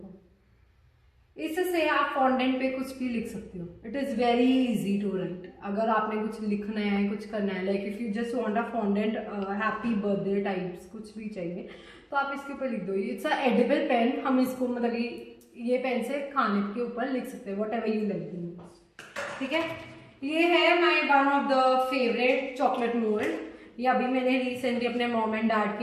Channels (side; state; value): both; identical; correlation 1.00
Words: इससे आप फॉन्डेंट पे कुछ भी लिख सकते हो. It is very easy to write. अगर आपने कुछ लिखना है, कुछ करना है, like if you just want a fondant happy birthday types कुछ भी चाहिए, तो आप इसके ऊपर लिख दो. It's a edible pen. हम इसको मतलब ये पेन से खाने के ऊपर लिख सकते हैं, वट एवर यू लाइक. ठीक है. ये है my one of the favourite chocolate mould. ये अभी मैंने रिसेंटली अपने मॉम एंड डैड